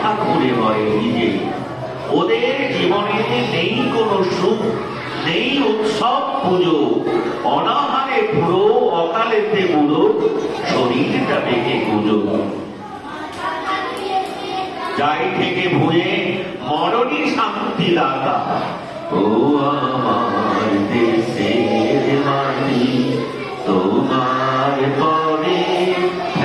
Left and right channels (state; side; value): identical; both; correlation 1.00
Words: ঘুরে মরে নিজে ওদের জীবনে নেই কোনো সুখ নেই উৎসব পুজো অনাহারে পুরো অকালেতে বুড়ো শরীরটা বেঁকে গুজো যাই থেকে ভুয়ে মরণই শান্তি দাতা ও আমার দেশের মাটি তোমার পরে